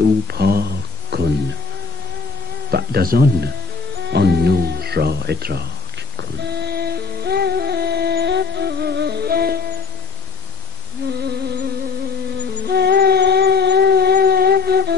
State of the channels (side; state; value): right; quieter; 4.7 dB